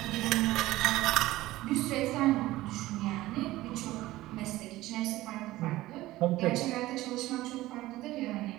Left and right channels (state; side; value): quieter; left; 17.1 dB